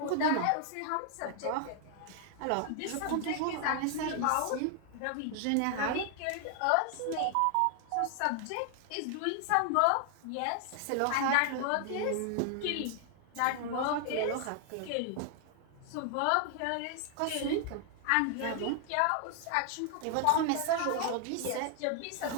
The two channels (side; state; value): both; different; correlation 0.00